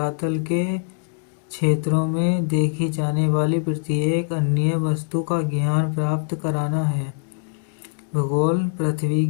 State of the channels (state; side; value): silent; right; digital silence